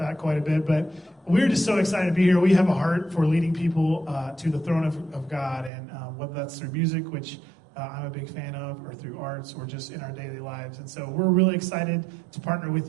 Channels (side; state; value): left; drops out; at 5.7 s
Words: quite a bit, but we're just so excited to be here. We have a heart for leading people to the throne of God, and whether that's through music, which I'm a big fan of, or through arts, or just in our daily lives. And so we're really excited to partner